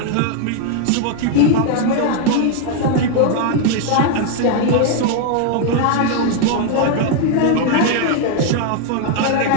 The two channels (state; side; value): different; both; correlation 0.00